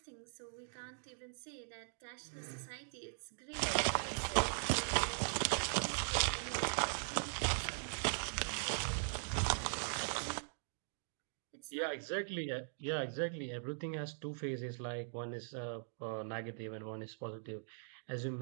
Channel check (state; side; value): silent; left; digital silence